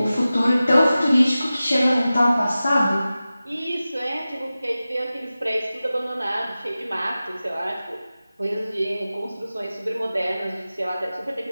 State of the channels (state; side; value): inverted; both; correlation -0.95